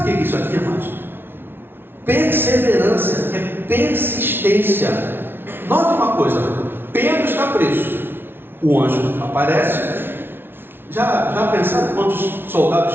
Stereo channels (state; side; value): late; left; 0.11 ms